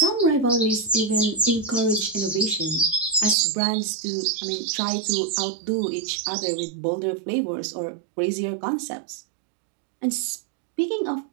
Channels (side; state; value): left; drops out; at 3.4 s